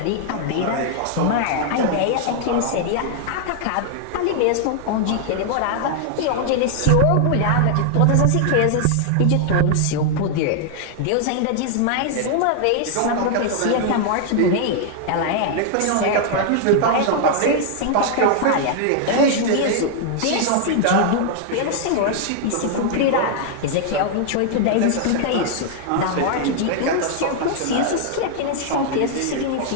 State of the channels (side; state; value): both; different; correlation 0.00